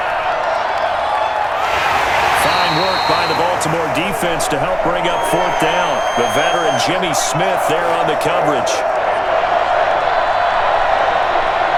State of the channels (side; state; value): both; identical; correlation 1.00